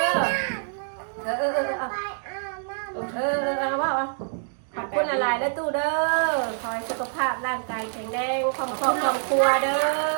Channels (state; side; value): silent; left; digital silence